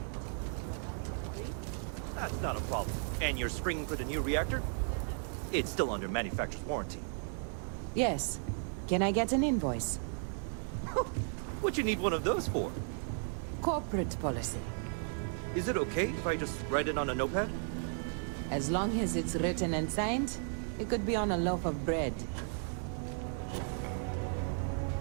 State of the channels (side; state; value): left; silent; 54 dB below the other